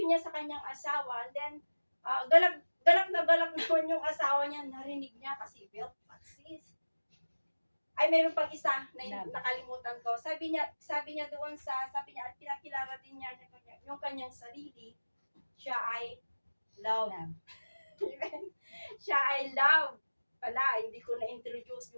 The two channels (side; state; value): both; inverted; correlation -1.00